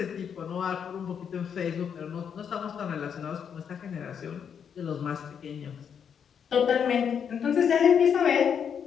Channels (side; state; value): right; quieter; 7.6 dB